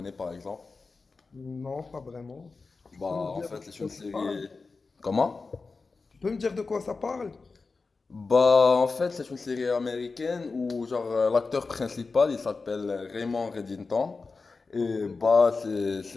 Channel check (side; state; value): right; quieter; 4.2 dB